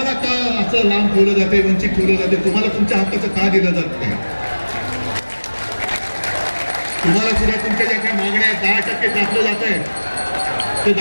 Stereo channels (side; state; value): both; inverted; correlation -1.00